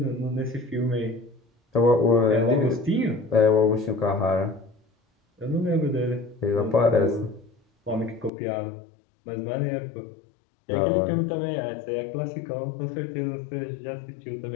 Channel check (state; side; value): drops out; right; at 8.3 s